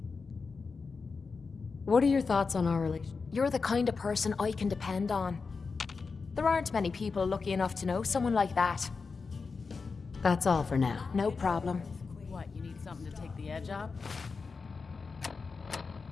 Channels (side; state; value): right; quieter; 4.7 dB